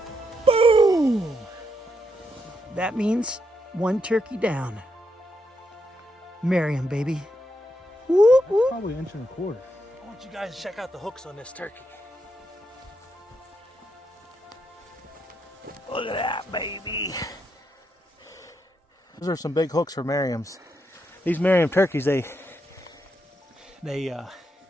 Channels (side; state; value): both; normal; correlation 0.80